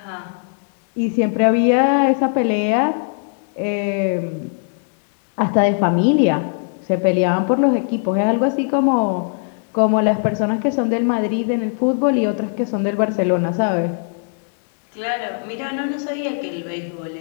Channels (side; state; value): right; silent; 64 dB below the other